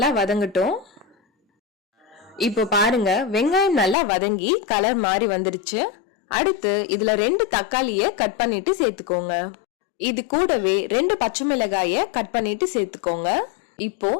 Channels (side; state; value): right; drops out; at 4.0 s